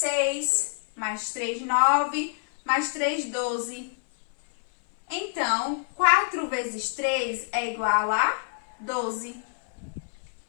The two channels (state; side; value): silent; right; 60 dB below the other